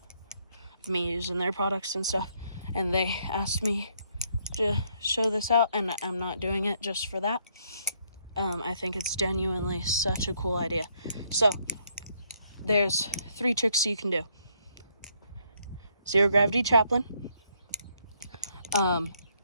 me using their products and stuff. And they asked me to show this out, and I'm not doing it just for that. I think it's genuinely such a cool idea. So there's 3 tricks you can do. Zero gravity chaplain.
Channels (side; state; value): both; inverted; correlation -0.71